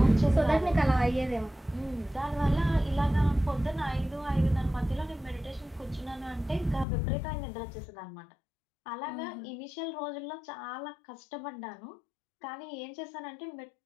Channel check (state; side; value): drops out; right; at 6.9 s